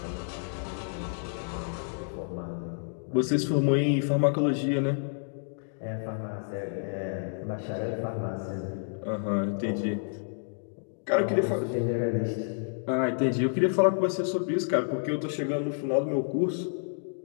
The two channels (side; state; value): right; silent; digital silence